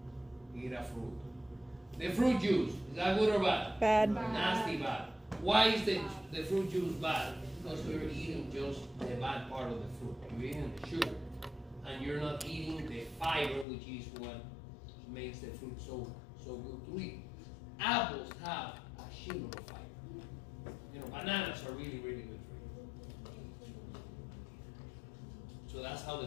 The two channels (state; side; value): drops out; right; at 13.7 s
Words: eat a fruit. The fruit juice, is that good or bad? Bad. Nasty bad. Why is the fruit juice bad? Because you're eating just the bad part of the fruit. You're eating the sugar. And you're not eating the fiber, which is what makes the fruit so good to eat. Apples have a shitload of fiber. Bananas are really, really good for you. So that's how